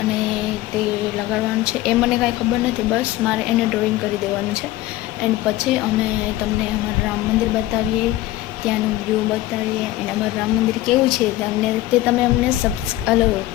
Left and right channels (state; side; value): quieter; right; 15.9 dB